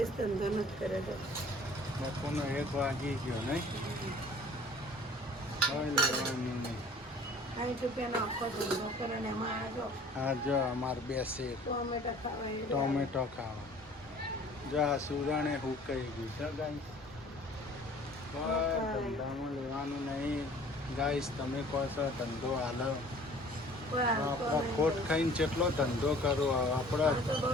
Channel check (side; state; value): both; normal; correlation 0.50